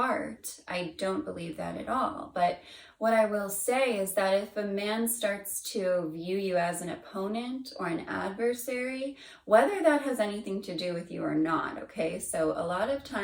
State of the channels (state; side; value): identical; both; correlation 1.00